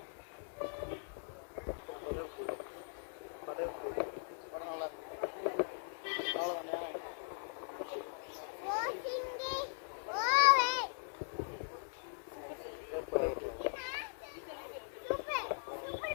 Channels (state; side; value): silent; right; digital silence